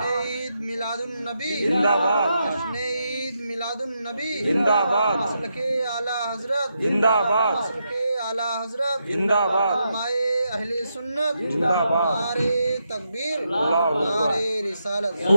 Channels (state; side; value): inverted; both; correlation -0.83